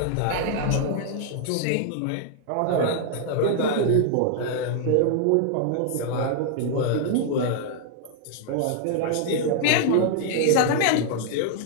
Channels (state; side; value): different; both; correlation 0.00